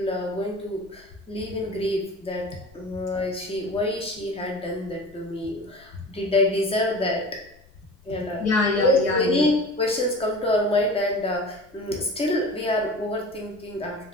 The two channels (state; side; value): noise; left; rumble, 27 dB below the sound